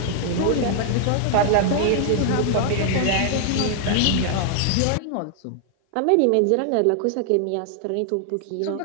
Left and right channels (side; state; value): both; different; correlation 0.00